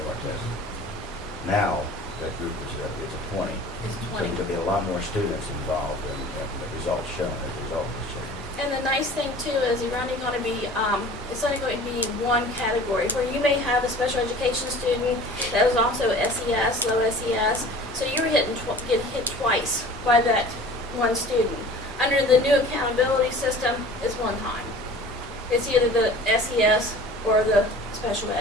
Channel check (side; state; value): both; normal; correlation 0.43